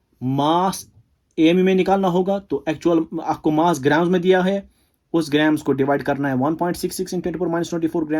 मास AMU में निकालना होगा तो एक्चुअल आपको मास ग्राम्स में दिया है, उस ग्राम्स को डिवाइड करना है 1.66 इन 10 to power minus 24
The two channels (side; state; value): both; identical; correlation 1.00